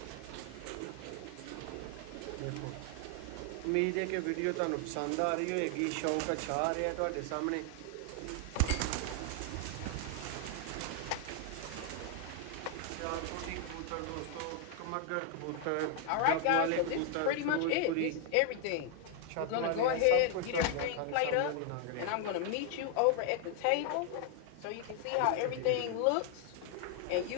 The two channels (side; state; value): both; different; correlation 0.00